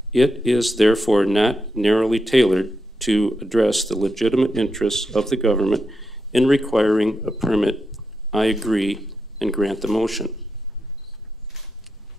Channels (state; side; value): normal; both; correlation 0.86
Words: It is therefore not narrowly tailored to address the legitimate interests of the government in requiring a permit. I agree and grant the motion.